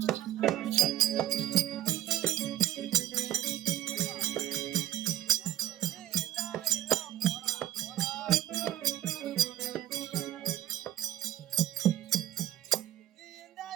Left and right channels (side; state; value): left; quieter; 12.8 dB